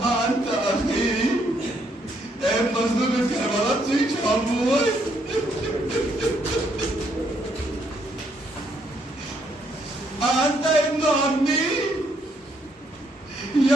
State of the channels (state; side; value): normal; both; correlation 0.72